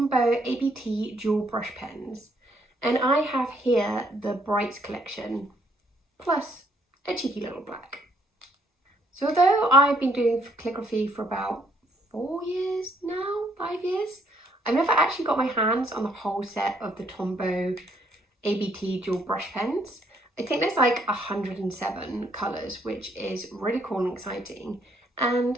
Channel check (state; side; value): normal; both; correlation 0.68